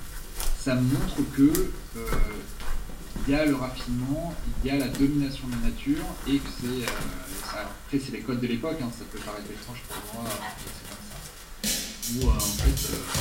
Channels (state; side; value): identical; both; correlation 1.00